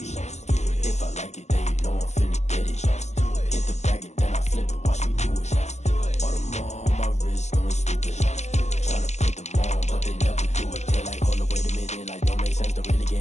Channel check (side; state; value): right; late; 0.33 ms